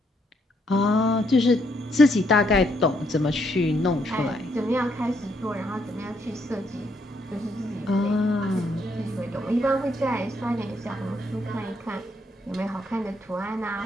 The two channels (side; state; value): both; normal; correlation 0.73